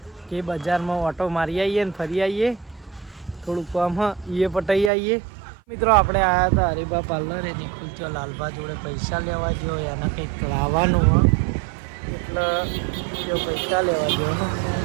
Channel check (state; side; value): drops out; left; at 4.9 s